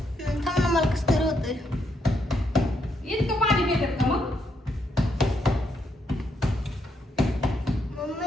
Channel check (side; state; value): both; normal; correlation 0.76